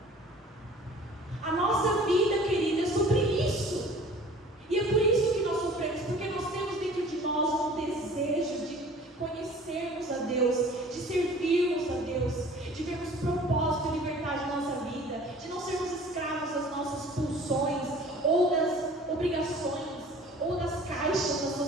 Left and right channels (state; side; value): normal; both; correlation 0.47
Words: A nossa vida, querida, é sobre isso. E é por isso que nós sofremos, porque nós temos dentro de nós um desejo de conhecermos a Deus, de servirmos a Deus, de vermos propósito e liberdade na nossa vida, de não sermos escravos das nossas pulsões, ou das obrigações, ou das caixas da